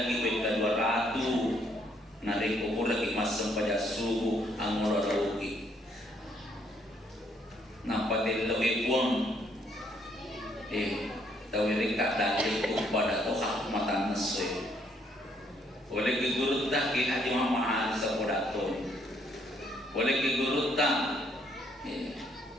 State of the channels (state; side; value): normal; both; correlation 0.69